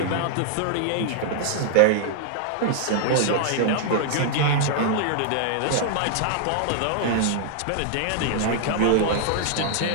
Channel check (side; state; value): both; different; correlation -0.01